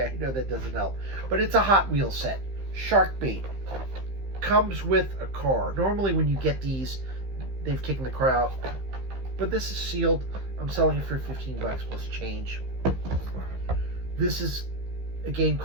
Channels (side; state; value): left; late; 15 ms